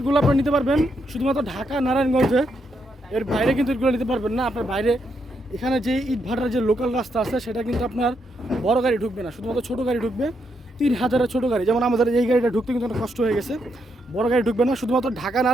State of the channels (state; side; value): normal; both; correlation 0.79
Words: আপনারা নিতে পারবেন শুধুমাত্র ঢাকা নারায়ণগঞ্জে, এর বাইরে কিন্তু এটগুলো নিতে পারবেন না। আপনার বাইরে এখানে যে ইট ভাটার যে লোকাল রাস্তা আছে সেটা কিন্তু আপনার বড় গাড়ি ঢুকবে না, শুধুমাত্র ছোটো গাড়ি ঢুকবে। 3000-এর ছোটো গাড়ি, যেমন আমাদের এই গাড়িটা ঢুকতে কিন্তু অনেক কষ্ট হয়ে গেছে। বড় গাড়ি ঢুকবে না, শুধুমাত্র ঢাকা